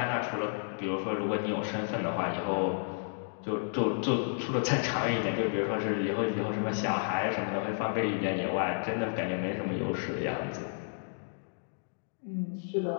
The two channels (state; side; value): silent; right; digital silence